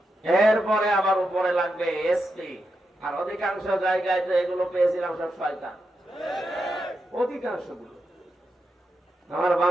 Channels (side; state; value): both; normal; correlation 0.86